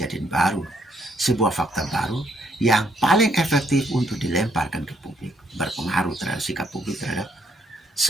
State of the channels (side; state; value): both; normal; correlation 0.71